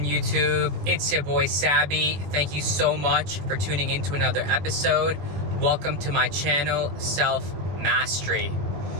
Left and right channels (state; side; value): late; left; 21 ms